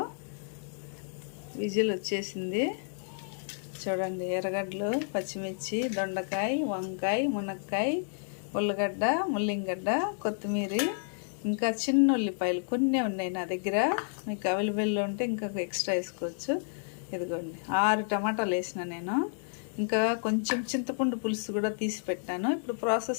విజిల్ వచ్చేసింది. చూడండి, ఎర్రగడ్డలు, పచ్చిమిర్చి, దొండకాయ, వంకాయ, మునక్కాయ, ఉల్లగడ్డ, ముల్లింగడ్డ, కొత్తిమీర, ఇంకా చిన్న ఉల్లిపాయలు కొన్ని ఉన్నాయి నా దగ్గర. మీకు అవైలబుల్లో ఉంటే ఇంకా ఎక్స్ట్రా వేసుకోవచ్చు. ఇదిగోండి, 6 టమాటాలు వేసిన నేను. ఇంకా కొంచెం చింతపండు పులుసు కూడా తీసి పెట్టాను. ఇప్పుడు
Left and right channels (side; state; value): right; silent; digital silence